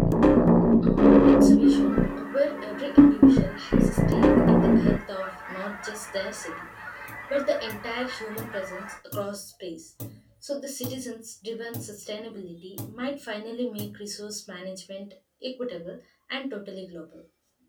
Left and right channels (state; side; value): identical; both; correlation 1.00